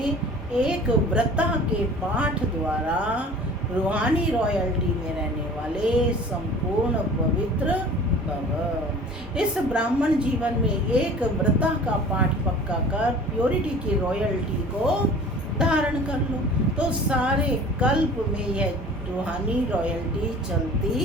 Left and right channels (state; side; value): normal; both; correlation 0.44